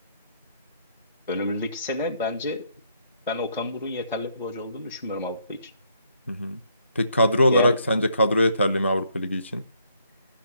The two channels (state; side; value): inverted; both; correlation -0.70